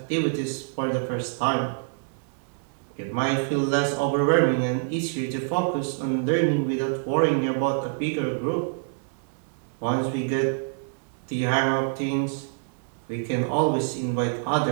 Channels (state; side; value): silent; left; digital silence